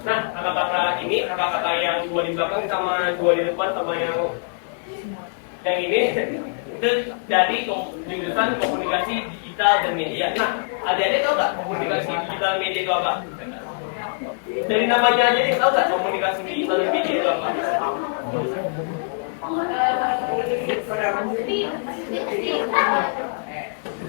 Nah, kakak-kakak ini, kakak-kakak yang dua di belakang sama dua di depan sama yang ini itu dari jurusan komunikasi digital dan media. Nah, adik-adik tahu nggak komunikasi digital media itu apa? Dari namanya aja nih, tahu nggak komunikasi digital dan media itu apa?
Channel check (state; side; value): silent; right; digital silence